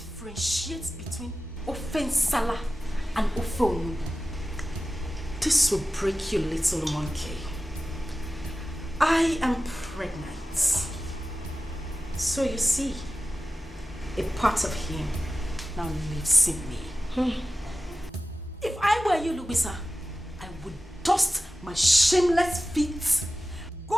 between Offensala and Ofonu. This will break you, little monkey. I am pregnant. So you see, a part of him now lives in me. If I were you, Louisa, I would dust my shameless feet. Go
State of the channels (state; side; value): normal; both; correlation 0.95